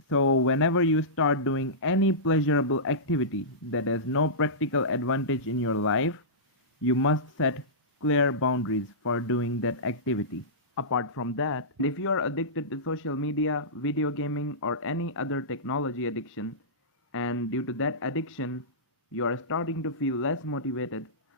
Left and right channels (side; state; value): both; normal; correlation -0.18